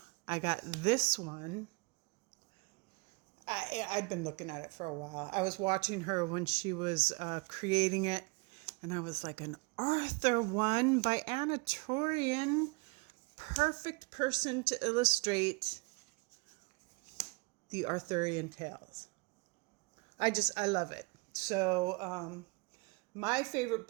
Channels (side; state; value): left; quieter; 29.4 dB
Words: I got this one. I'd been looking at it for a while. I was watching her when she was creating it. And I was like, an Arthur one by Anna Torian. Perfect person to illustrate the Arthurian tales. I love it. So my favorite